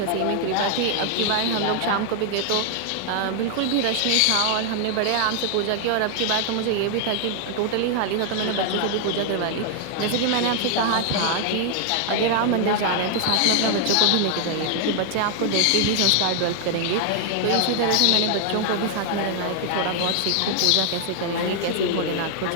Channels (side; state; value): both; different; correlation 0.00